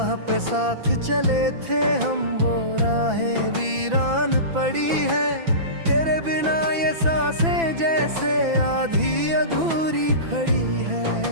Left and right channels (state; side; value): late; left; 6.0 ms